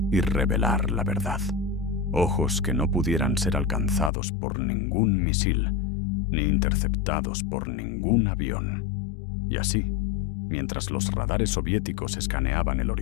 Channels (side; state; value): right; drops out; at 4.1 s